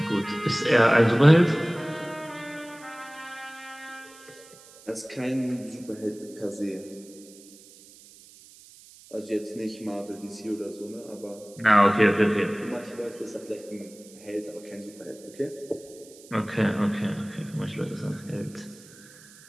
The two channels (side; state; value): right; noise; hiss, 22 dB below the sound